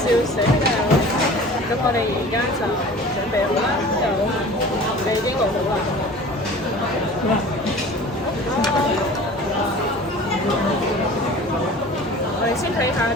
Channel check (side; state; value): both; normal; correlation 0.42